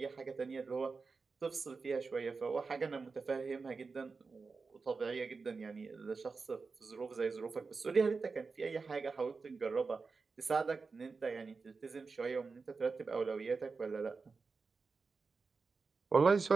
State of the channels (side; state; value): left; quieter; 4.5 dB